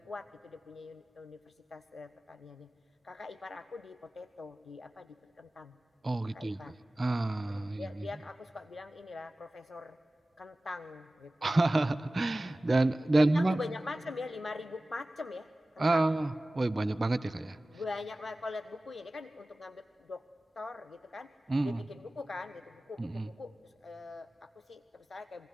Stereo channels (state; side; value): normal; both; correlation 0.97